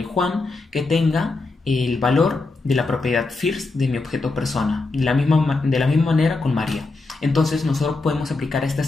Juan que tenga el valor de la propiedad first de mi objeto persona, de la misma manera con María. Entonces nosotros podemos aplicar esta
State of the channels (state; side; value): quieter; right; 3.5 dB